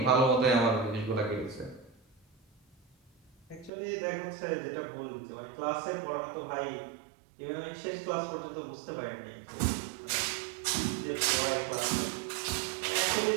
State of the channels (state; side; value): drops out; left; at 3.7 s